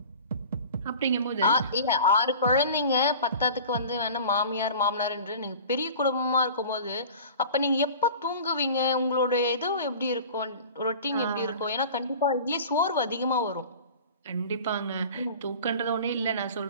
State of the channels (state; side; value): inverted; both; correlation -0.40